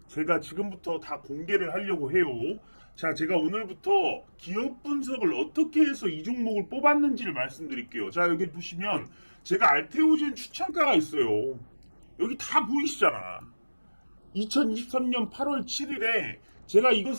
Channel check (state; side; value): inverted; both; correlation -1.00